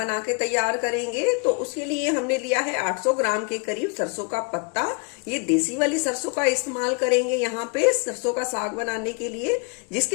के तैयार करेंगे। तो उसके लिए हमने लिया है 800 ग्राम के करीब सरसों का पत्ता। ये देसी वाली सरसों का इस्तेमाल करेंगे यहाँ पे सरसों का साग बनाने के लिए,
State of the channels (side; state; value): right; quieter; 35.6 dB